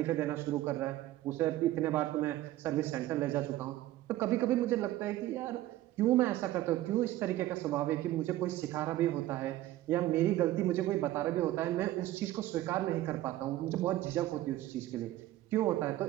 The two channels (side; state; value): left; quieter; 15.1 dB